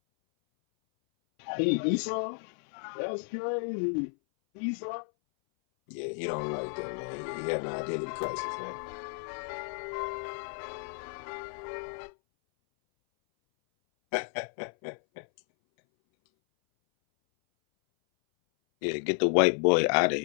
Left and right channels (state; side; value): silent; right; 57 dB below the other